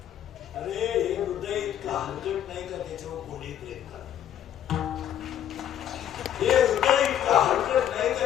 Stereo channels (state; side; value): quieter; right; 10.5 dB